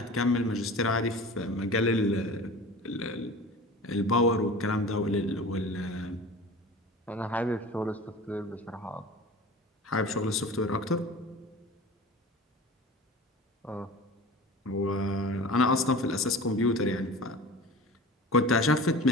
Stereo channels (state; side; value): normal; both; correlation 0.37